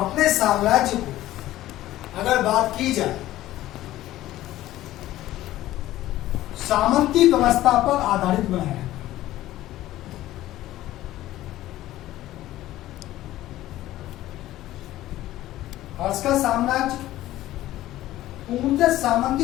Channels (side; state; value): right; quieter; 15.0 dB